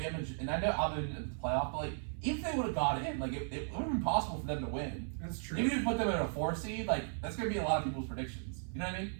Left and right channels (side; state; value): left; silent; 54 dB below the other